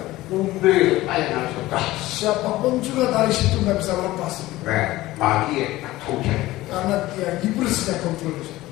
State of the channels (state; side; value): quieter; right; 17.5 dB